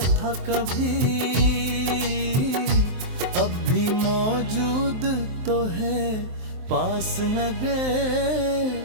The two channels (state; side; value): late; left; 23 ms